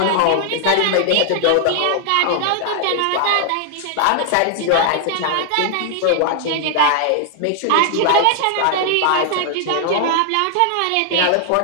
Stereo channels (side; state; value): both; different; correlation 0.00